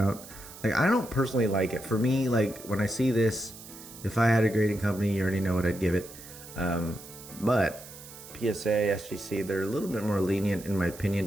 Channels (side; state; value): right; noise; hiss, 16 dB below the sound